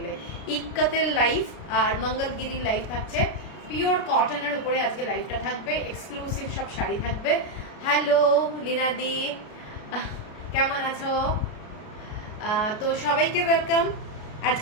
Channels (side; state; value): right; late; 33 ms